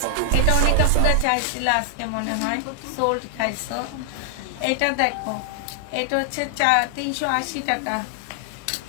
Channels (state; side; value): different; both; correlation 0.00